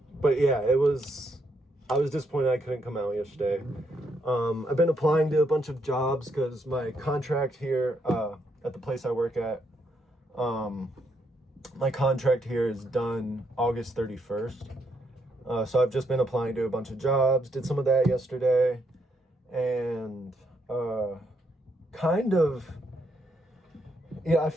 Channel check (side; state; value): both; normal; correlation 0.76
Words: But yeah, I was disappointed I couldn't come out yesterday. I've been applying to a bunch of jobs because my contract here at the place I work at, my contract here is done August 31st. So I've just been applying to a bunch of jobs, did some of that yesterday, and I